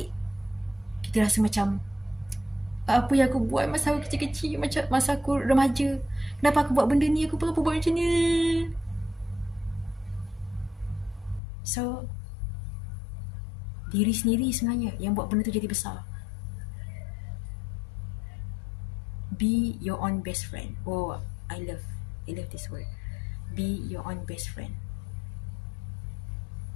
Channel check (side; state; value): right; drops out; at 11.4 s